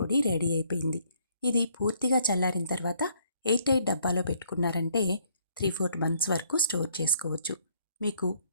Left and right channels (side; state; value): both; inverted; correlation -0.67